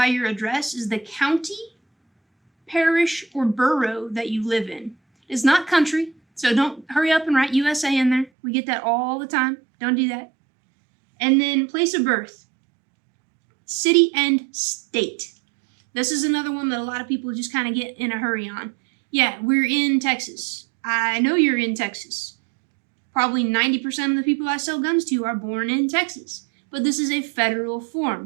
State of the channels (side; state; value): left; drops out; at 8.3 s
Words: your address is the county, parish, or borough that you live in. It's not country, so don't hurry up and write USA in there. We get that all the time. Don't do that. And then place of birth, city and state. This is another one that a lot of people just kind of get in a hurry on. Yeah, we're in Texas. I know you're in Texas. Probably 90% of the people I sell guns to are born in Texas. But this is a federal